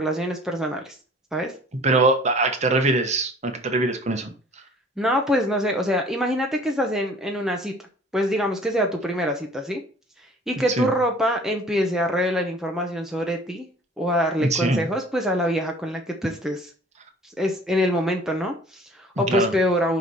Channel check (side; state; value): both; normal; correlation 0.50